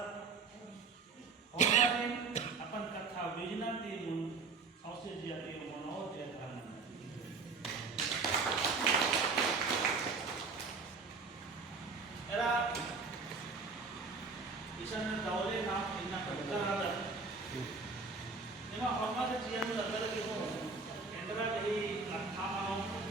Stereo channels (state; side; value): quieter; left; 4.4 dB